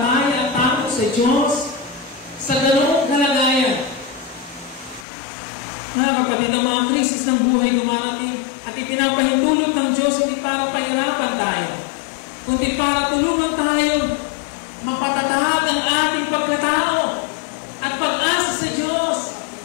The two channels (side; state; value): right; drops out; at 5.1 s